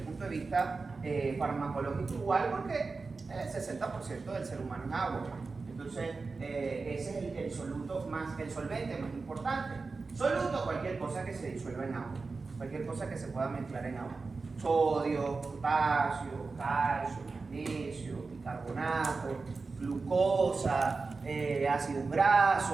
punto de vista farmacológico igual, porque el 60% del ser humano es agua. Entonces ese es el soluto más, el solvente más importante. Soluto, cualquier cosa que se disuelva en agua, cualquier cosa que se pueda mezclar en agua. Sodio, potasio, calcio, magnesio, bicarbonato, glucosa, ácidos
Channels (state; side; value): quieter; left; 4.1 dB